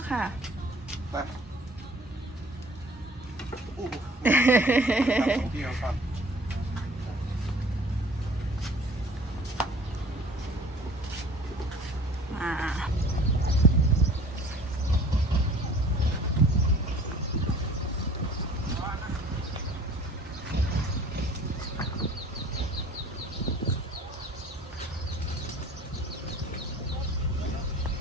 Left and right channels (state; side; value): normal; both; correlation 0.49